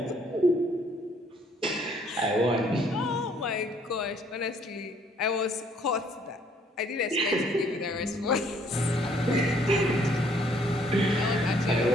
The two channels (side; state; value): both; normal; correlation 0.63